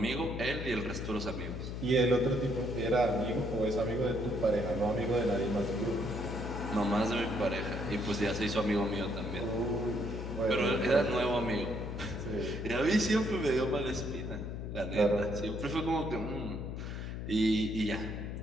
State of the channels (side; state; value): left; noise; hum, 6 dB below the sound